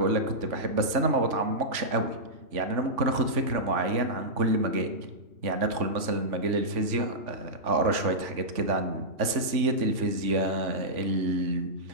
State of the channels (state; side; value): late; left; 3.5 ms